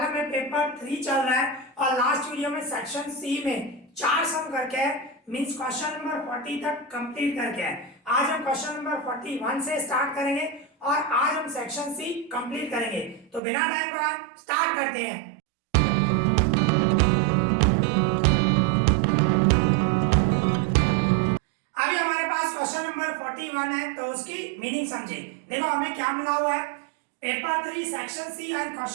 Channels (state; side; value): drops out; left; at 13.4 s